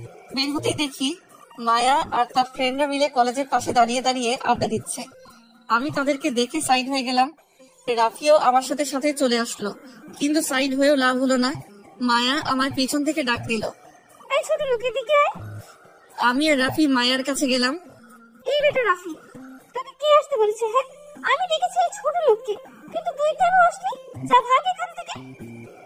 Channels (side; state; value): both; identical; correlation 1.00